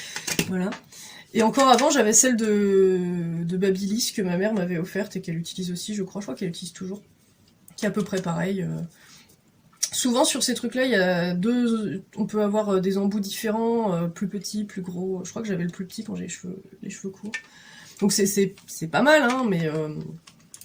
Voilà. Et encore avant, j'avais celle de Babyliss que ma mère m'avait offerte et qu'elle utilise aussi, je crois qu'elle utilise toujours. Qui est à peu près pareil. Souvent sur ces trucs-là, il y a on peut avoir des embouts différents, plus petits, plus gros. Je crois que j'avais le plus petit quand j'ai les cheveux courts. Donc c'est pas mal, hein,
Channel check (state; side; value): identical; both; correlation 1.00